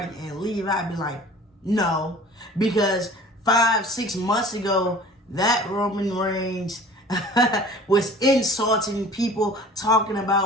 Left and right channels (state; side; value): normal; both; correlation 0.45